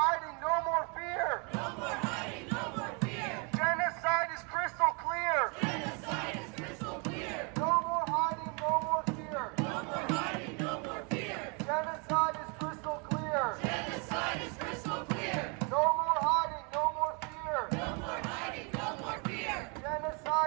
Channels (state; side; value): quieter; left; 33.7 dB